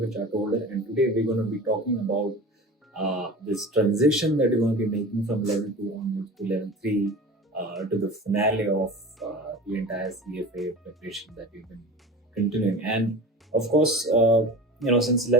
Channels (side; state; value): both; normal; correlation 0.35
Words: chart holder, and today we're going to be talking about this transition that you're going to be making from level 2 onwards to level 3 to the finale of the entire CFA preparation that we've been continuing. And of course, since